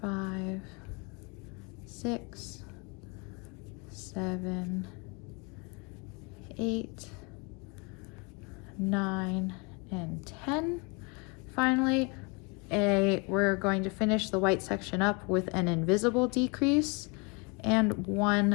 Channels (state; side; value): quieter; right; 31.1 dB